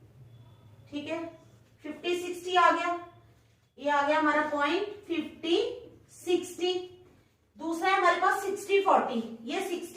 ठीक है। 50 60 आ गया, ये आ गया हमारा पॉइंट 50 60। दूसरा है हमारे पास 60 40, ये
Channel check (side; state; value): both; identical; correlation 1.00